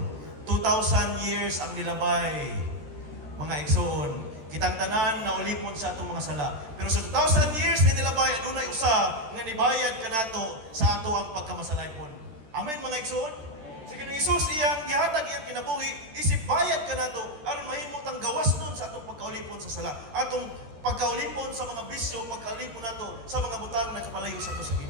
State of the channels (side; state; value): left; late; 13 ms